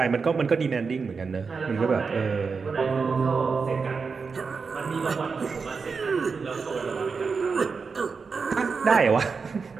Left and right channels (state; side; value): quieter; left; 5.1 dB